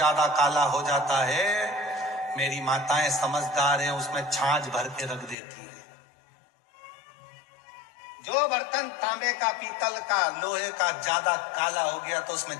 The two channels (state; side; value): drops out; right; at 5.4 s